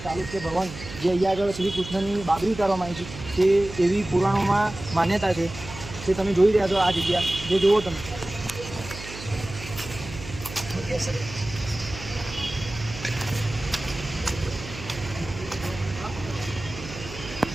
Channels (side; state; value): right; noise; hum, 12 dB below the sound